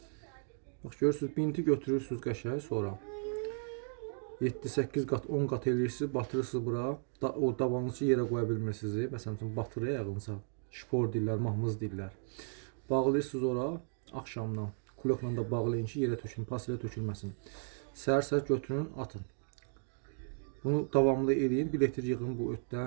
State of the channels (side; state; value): left; silent; digital silence